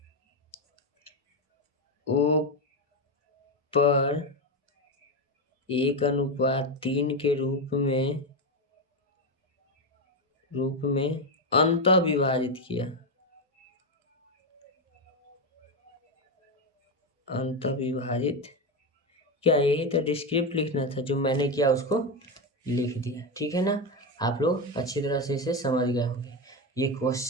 O पर 1:3 के रूप में अंतः विभाजित किया। क्या यही तो डिस्क्रिप्ट लिखना था, जो मैंने किया उसको लिख दिया। ठीक है ना। आप लोग अच्छी तरह से इसे समझ गए होंगे। ये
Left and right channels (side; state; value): both; normal; correlation 0.11